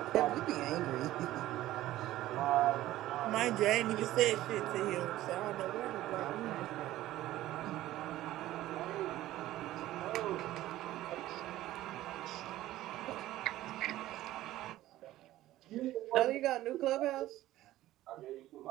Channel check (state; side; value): quieter; left; 15.1 dB